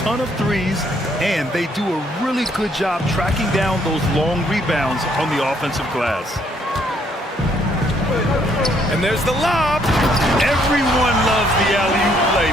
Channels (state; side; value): normal; both; correlation 0.68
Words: of threes, and they do a really good job tracking down those long rebounds on the offensive glass. And there's the lob. Everyone loves the alley-oop play,